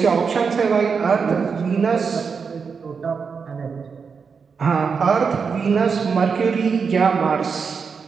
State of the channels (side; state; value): left; quieter; 5.7 dB